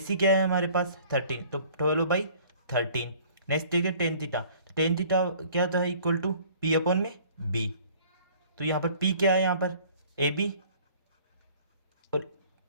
क्या है हमारे पास 13, तो 12/13। नेक्स्ट देखिए टेन थीटा, तो टेन थीटा क्या होता है इक्वल टू पी अपॉन में बी। तो यहाँ पर पी क्या है यहाँ पर ए बी, और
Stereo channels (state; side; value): inverted; both; correlation -0.53